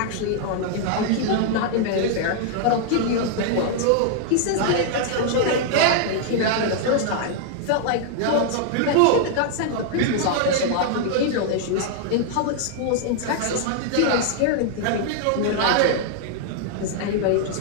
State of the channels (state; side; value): different; both; correlation -0.01